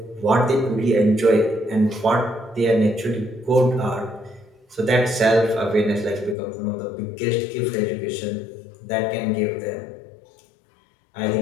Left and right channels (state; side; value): drops out; right; at 6.4 s